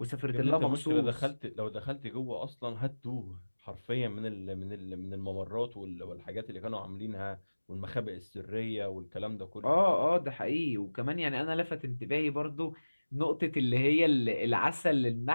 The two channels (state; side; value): inverted; both; correlation -1.00